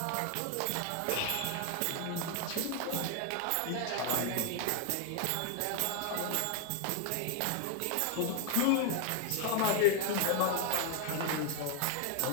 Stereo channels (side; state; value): both; different; correlation 0.00